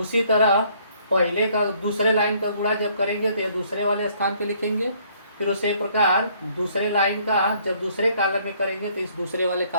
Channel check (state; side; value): inverted; both; correlation -0.63